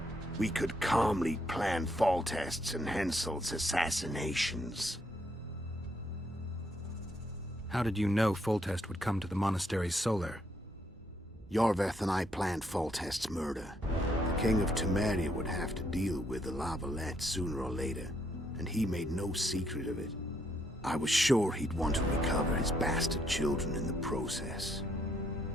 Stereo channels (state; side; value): normal; both; correlation 0.73